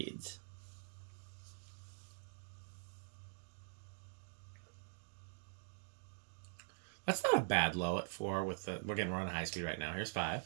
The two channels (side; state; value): left; silent; digital silence